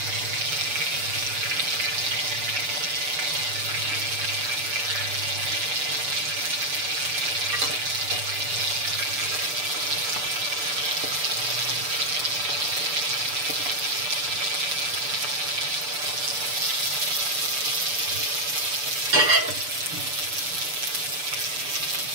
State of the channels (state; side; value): late; left; 6.8 ms